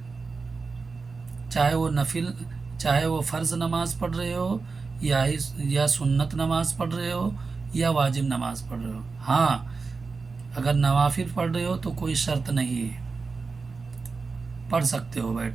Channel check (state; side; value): quieter; left; 4.4 dB